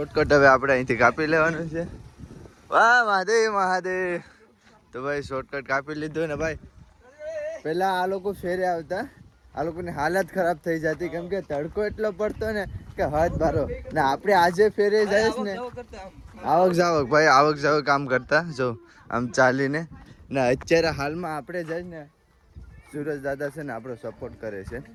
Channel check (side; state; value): both; identical; correlation 1.00